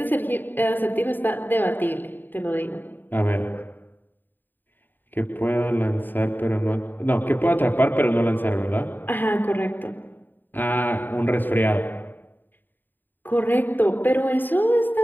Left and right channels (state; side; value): late; right; 0.091 ms